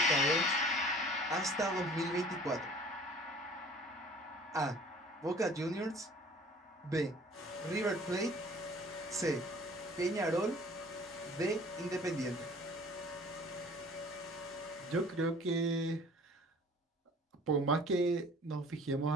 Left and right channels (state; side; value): normal; both; correlation 0.49